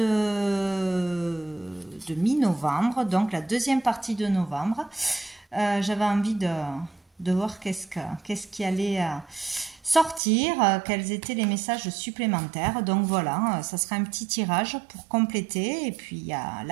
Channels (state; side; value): drops out; left; at 10.2 s